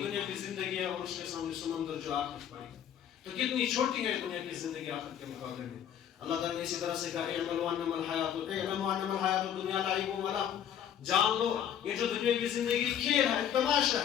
دنیا کی زندگی ہے اور اس کے سامنے سمندر جو آخرت پڑی ہے. تو کتنی چھوٹی ہے دنیا کی زندگی آخرت کے مقابلے میں. اللہ تعالیٰ نے اسی طرح سے کہا اعملوا انما الحیات الدنیا لعب و لہو. جان لو یہ جو دنیا کی زندگی کھیل ہے، تماشا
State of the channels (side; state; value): right; quieter; 9.6 dB